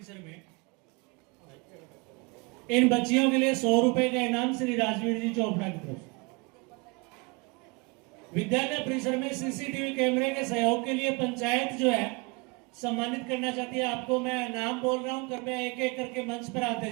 में इन बच्चियों के लिए 100 रुपए का इनाम श्री राजवीर जी चोपड़ा की तरफ से। विद्यालय परिसर में सीसीटीवी कैमरे के सहयोग के लिए पंचायत जो है सम्मानित करना चाहती है। आपको मैं नाम बोल रहा हूं, कृपया एक एक करके मंच पर आते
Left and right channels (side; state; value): left; quieter; 28.6 dB